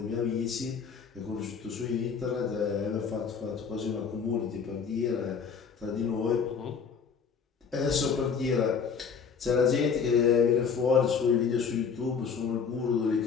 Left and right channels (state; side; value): quieter; right; 6.2 dB